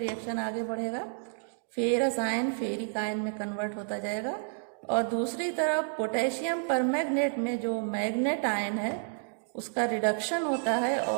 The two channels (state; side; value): silent; left; digital silence